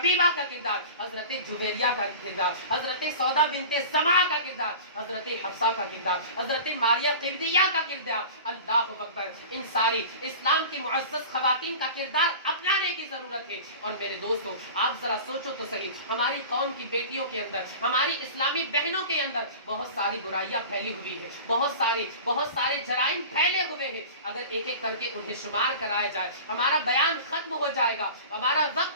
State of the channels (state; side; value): inverted; both; correlation -0.37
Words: کا کردار، حضرت جویریہ کا کردار، حضرت سودا بنت زمعہ کا کردار، حضرت حفصہ کا کردار، حضرت ماریہ قبطیہ کا کردار، اللہ اکبر، ان ساری اسلام کی معزز خواتین کا کردار اپنانے کی ضرورت ہے. اور میرے دوستو آپ ذرا سوچو تو صحیح، ہماری قوم کی بیٹیوں کے اندر، ہماری اسلامی بہنوں کے اندر بہت ساری برائیاں پھیلی ہوئی ہے، بہت سارے جرائم پھیلے ہوئے ہیں. اگر ایک ایک کر کے انہیں شمار کرایا جائے ہمارا بیان ختم ہو جائے گا، ہمارا